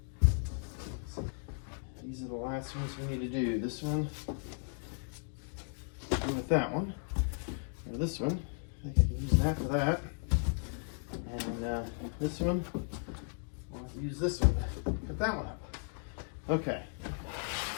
These are the last ones we need to do. This one, with that one, or this one, I think I can use that for that. And this one, I'll have to use this one to put that one up. Okay.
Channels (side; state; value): right; silent; 54 dB below the other